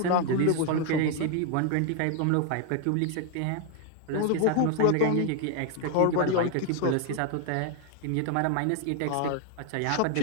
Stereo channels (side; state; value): both; different; correlation 0.01